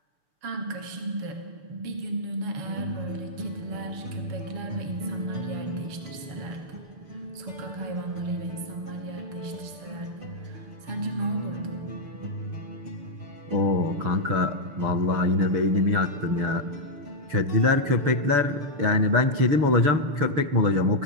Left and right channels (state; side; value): late; left; 6.8 ms